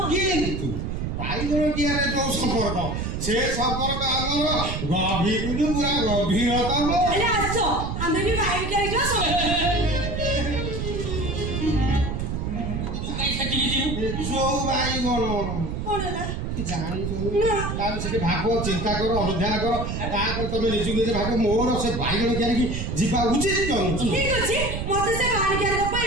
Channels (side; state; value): right; noise; rumble, 3 dB below the sound